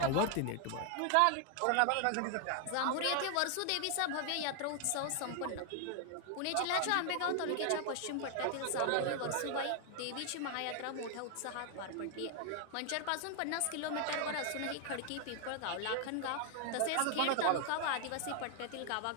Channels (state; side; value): different; both; correlation 0.00